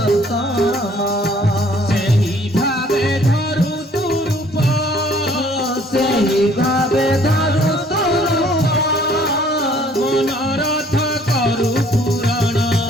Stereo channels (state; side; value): normal; both; correlation 0.58